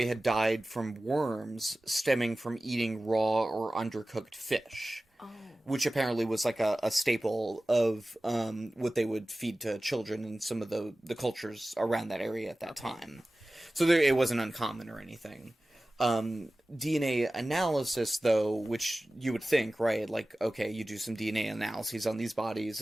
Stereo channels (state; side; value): normal; both; correlation 0.97